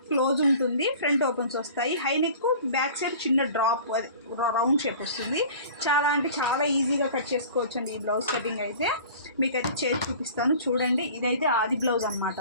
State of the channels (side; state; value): both; inverted; correlation -0.43